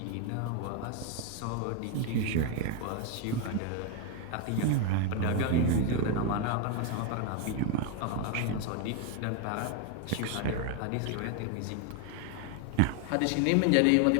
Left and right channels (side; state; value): both; different; correlation 0.01